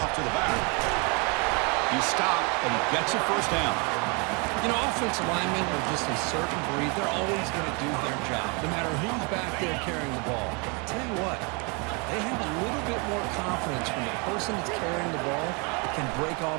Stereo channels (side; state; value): left; quieter; 32.1 dB